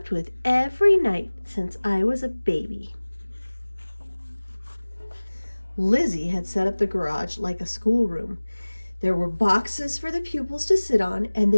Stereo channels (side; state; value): both; inverted; correlation -1.00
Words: with every night since I was a baby." Lizzie had set up the garage like a schoolroom. There were boxes for the pupils to sit on, and